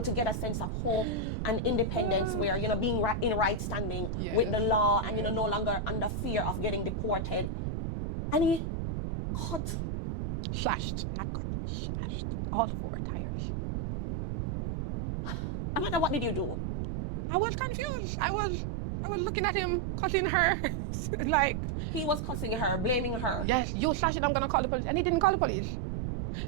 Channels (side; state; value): right; noise; rumble, 3 dB below the sound